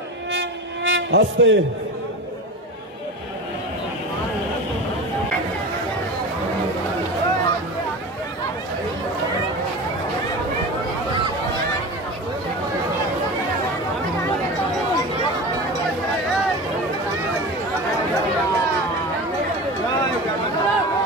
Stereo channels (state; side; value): normal; both; correlation 0.29